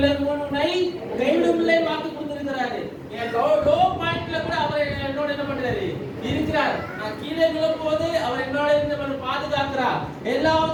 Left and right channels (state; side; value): identical; both; correlation 1.00